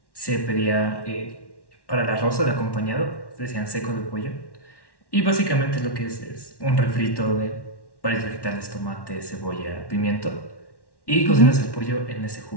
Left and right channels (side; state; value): right; late; 1.1 ms